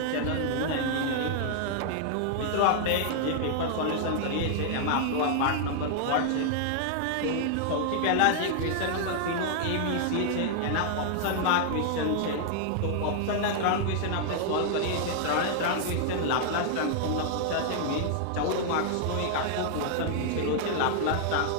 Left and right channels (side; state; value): both; different; correlation -0.01